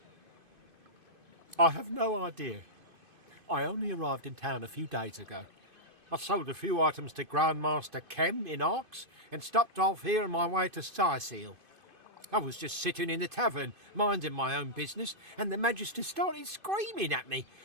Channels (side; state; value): left; late; 2.5 ms